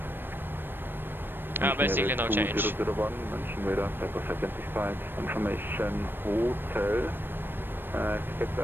Basically no change. 2001, München Radar, Pepper identified. Information Hotel. Expect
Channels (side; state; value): left; late; 0.096 ms